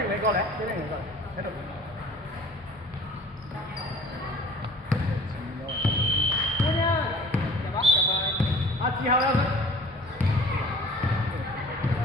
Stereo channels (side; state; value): both; normal; correlation 0.48